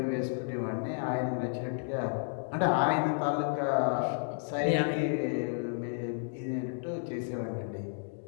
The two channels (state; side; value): silent; right; digital silence